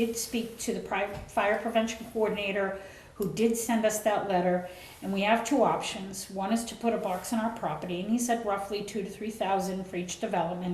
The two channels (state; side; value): identical; both; correlation 1.00